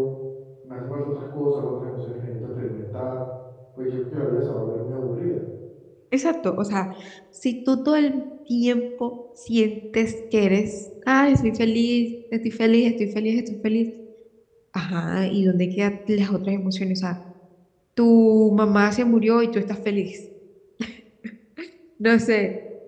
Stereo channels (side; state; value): both; identical; correlation 1.00